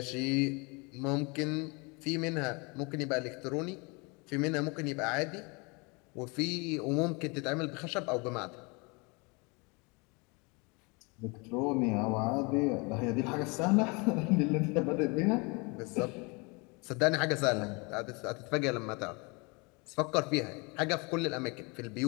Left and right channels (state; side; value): quieter; right; 29.3 dB